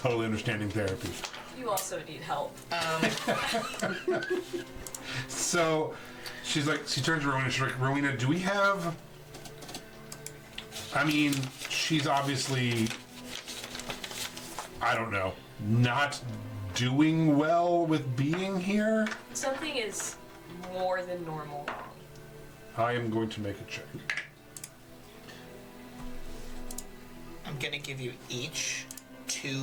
understanding therapy. You also need help. So, she's like, she turns to Rowena. She's like, Rowena, do we have? I mean, she's obviously, I don't know, not doing well with being here. Something is more than normal wrong. I am going to make a check. I'm gonna give you each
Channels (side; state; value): both; identical; correlation 1.00